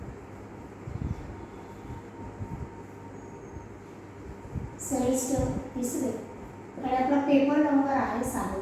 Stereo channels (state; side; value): identical; both; correlation 1.00